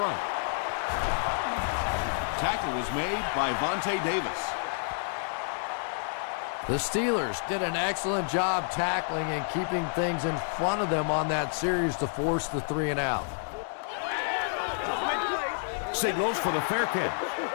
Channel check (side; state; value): right; silent; 56 dB below the other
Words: Tackle was made by Vontae Davis. The Steelers did an excellent job tackling and keeping things in front of them on that series to force the 3 and out. Signals for the fair